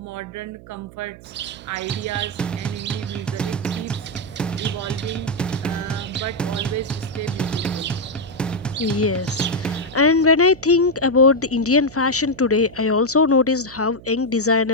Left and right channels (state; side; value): noise; right; hum, 19 dB below the sound